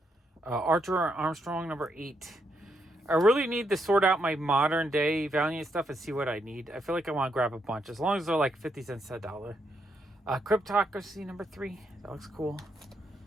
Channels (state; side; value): normal; both; correlation 0.79